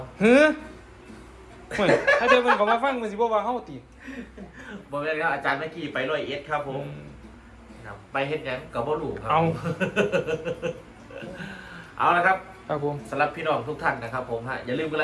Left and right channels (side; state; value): both; identical; correlation 1.00